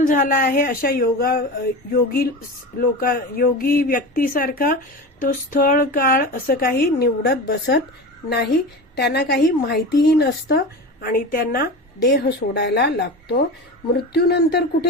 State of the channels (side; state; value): both; normal; correlation 0.28